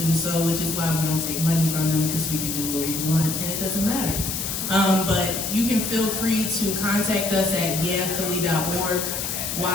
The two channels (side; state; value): left; noise; hiss, 3 dB below the sound